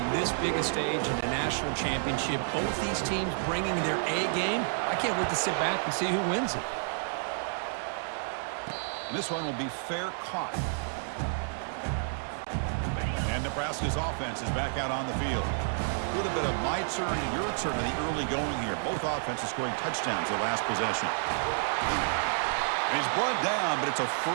this biggest stage in the national championship. Both these teams bringing their A game. I can't wait to sit back and see who wins it. And this one will be fair caught. And Nebraska's offense is back out on the field. A little bit of my turn and your turn in the early going here. Both offenses scoring touchdowns the last possession. And he's brought down, but it's a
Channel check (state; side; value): silent; left; digital silence